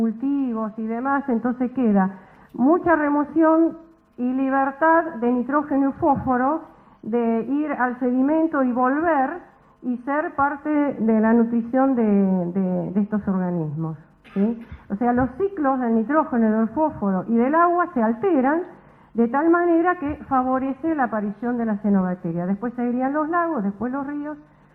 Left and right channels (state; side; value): identical; both; correlation 1.00